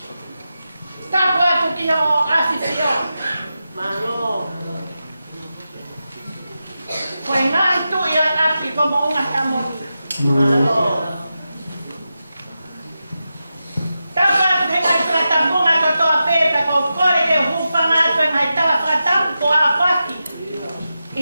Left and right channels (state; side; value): inverted; both; correlation -0.90